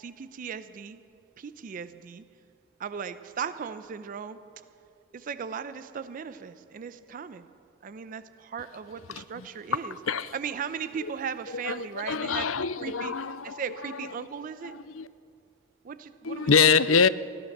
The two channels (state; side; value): quieter; right; 3.3 dB